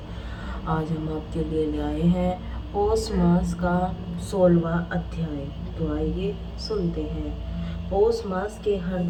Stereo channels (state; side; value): identical; both; correlation 1.00